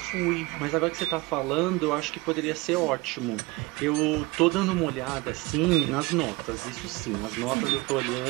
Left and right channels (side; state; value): left; quieter; 23.2 dB